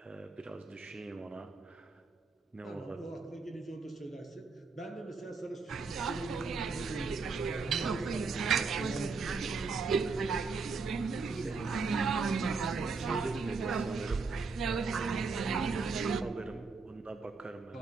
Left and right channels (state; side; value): quieter; left; 4.5 dB